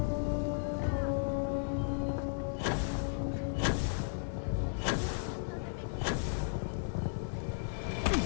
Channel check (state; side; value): silent; right; digital silence